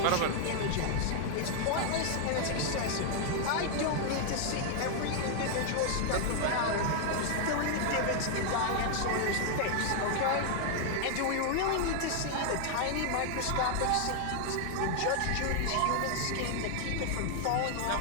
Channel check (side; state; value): both; different; correlation 0.00